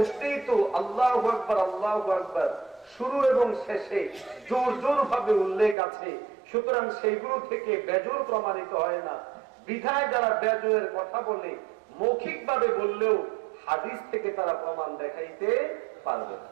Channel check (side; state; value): left; drops out; at 5.8 s